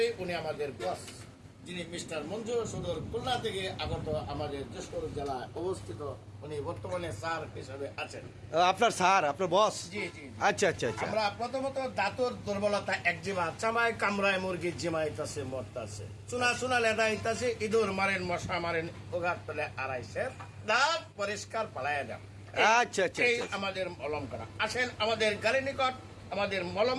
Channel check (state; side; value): identical; both; correlation 1.00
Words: উনি আমাদের বস, যিনি মিস্টার মঞ্জু, সুদূর খুলনা থেকে আগত, আমাদের যশোর জেলায় অবস্থিত। উনি বর্তমানে স্যার হিসেবে আছেন। আপনার স্যার, আপনার বস? জি জি। আচ্ছা আচ্ছা আচ্ছা। আমরা প্রথমত দাঁতর দুর্বলতা, একজিমা, চামায় কামড়ায় মুরগি জিমাইতাছে মরতাছে, চুনা চুনা লেদাইতাছে, ইঁদুর মারেন, মশা মারেন, ওগার তলে আড়াইছে, দাঁত পরিষ্কার পালাইয়া দেন। আচ্ছা আচ্ছা এই আচ্ছা। আমাদের মলমখানা। আসেন আমাদের গাড়ি নিকট, আমাদের